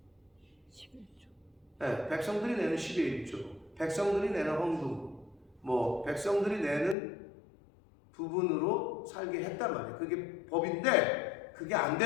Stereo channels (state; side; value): drops out; right; at 7.0 s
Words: 11조. 네, 백성들이 내는 10의 1조, 백성들이 내는 헌금, 백성들이 내는 부분으로 살게 했단 말이에요. 그게 법인데 그게 안